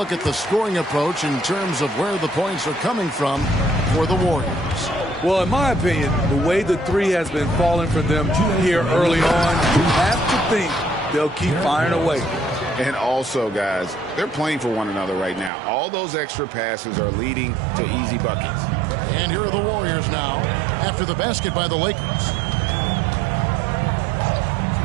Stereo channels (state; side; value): drops out; left; at 15.5 s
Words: at the scoring approach in terms of where the points are coming from for the Warriors. Well, in my opinion, the way the 3 has been falling for them here early on, you have to think they'll keep firing away. And also, guys, they're playing for one another right now. All those extra passes are leading to easy buckets. And here are the Warriors now after the basket by the Lakers.